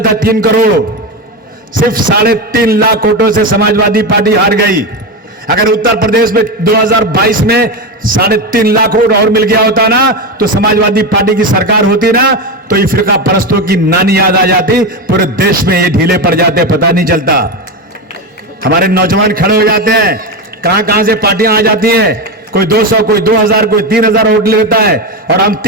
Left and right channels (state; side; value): normal; both; correlation 0.16